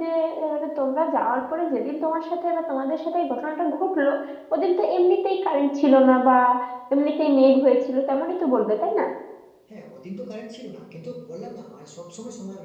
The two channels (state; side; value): identical; both; correlation 1.00